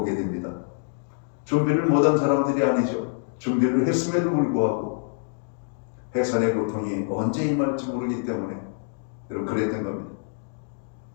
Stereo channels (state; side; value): silent; right; digital silence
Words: 됩니다. 준비를 못한 사람들이 아니죠. 준비를 했음에도 불구하고 해산의 고통이 언제 임할지 모르기 때문에 그랬던 겁니다.